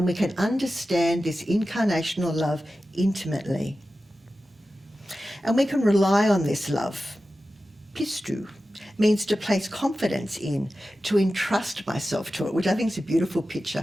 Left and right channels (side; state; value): both; normal; correlation 0.94